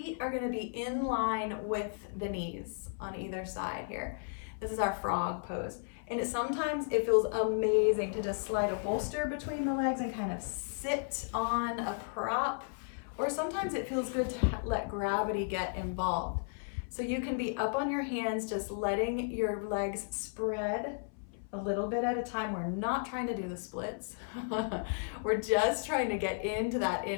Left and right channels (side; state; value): right; silent; 55 dB below the other